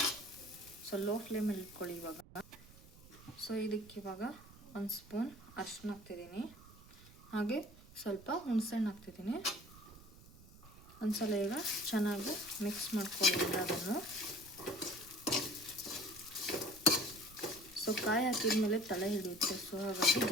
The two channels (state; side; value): noise; right; rumble, 21 dB below the sound